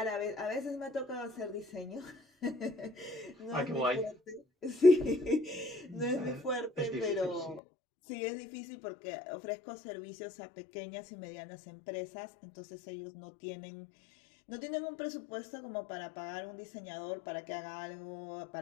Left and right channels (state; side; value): drops out; right; at 7.6 s